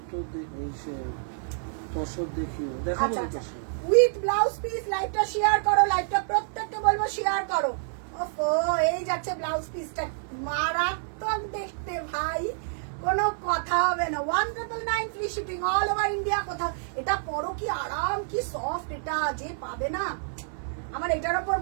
দেখে তসর দেখিও, দেখাবো তো। With blouse piece. লাইভটা শেয়ার করো, লাইভটা প্রত্যেককে বলবো শেয়ার করো। ওফো, এই যাচ্ছে ব্লাউজ পিসটা, মারাত্মক দেখতে ভাই, কোনো কথা হবে না। 1999 free shipping all over India. কোথাও এটা পরো, কি আরাম, কি সফট, এটা যে পাবে না, আমার এটার উপর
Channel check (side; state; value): left; silent; digital silence